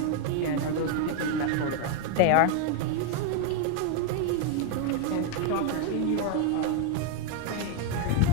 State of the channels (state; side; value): different; both; correlation 0.01